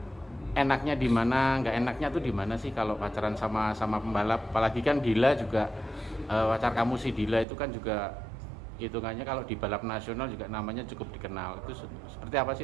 enaknya di mana, nggak enaknya tuh di mana sih kalau pacaran sama pembalap? Apalagi kan Dila juga pacar kamu si Dila itu kan juga hitungannya kalau di balap nasional juga namanya cukup dikenal. Itu seperti apa sih,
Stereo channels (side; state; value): left; drops out; at 7.5 s